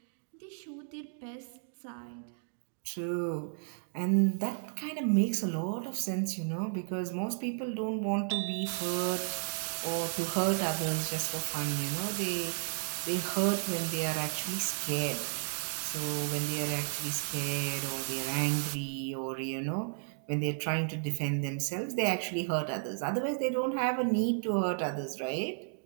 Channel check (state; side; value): silent; left; 56 dB below the other